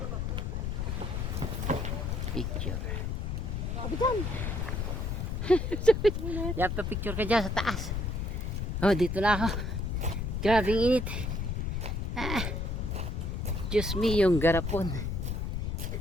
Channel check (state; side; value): noise; left; rumble, 2 dB below the sound